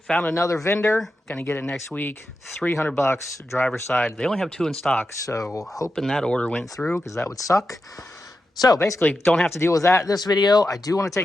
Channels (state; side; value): normal; both; correlation 0.89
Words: another vendor. Gonna get it next week. 300 bucks, driver's side. They only have 2 in stock, so hoping that order went through because that would suck. So basically, don't have to deal with that this video. I do want to